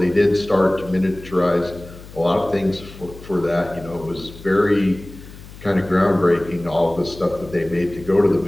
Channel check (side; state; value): left; noise; hum, 17 dB below the sound